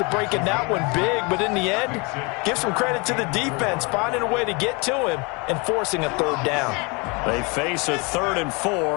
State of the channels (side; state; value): right; quieter; 29.5 dB